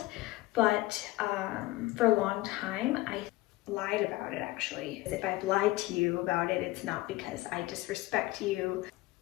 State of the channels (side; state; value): right; quieter; 18.9 dB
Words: but for a long time, I lied about it actually. If I've lied to you about it, it's not because I disrespect you.